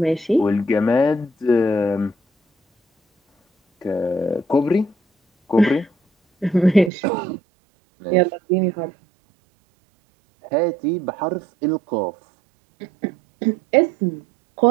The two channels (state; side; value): drops out; left; at 6.9 s